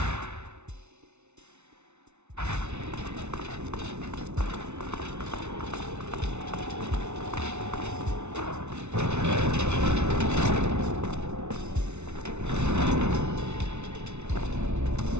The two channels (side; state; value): left; late; 0.82 ms